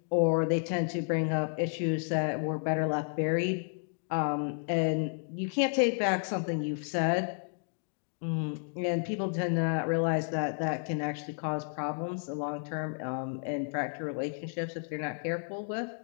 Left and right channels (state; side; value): silent; right; 56 dB below the other